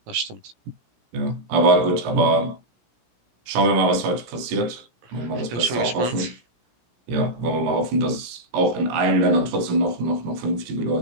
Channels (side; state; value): left; late; 17 ms